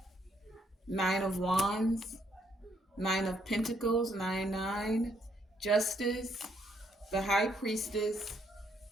Nine of Wands, Nine of Pentacles, 9, Justice, the High Priestess,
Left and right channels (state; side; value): normal; both; correlation 0.71